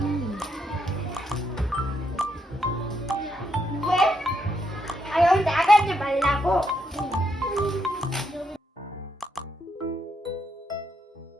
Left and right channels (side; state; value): both; normal; correlation 0.78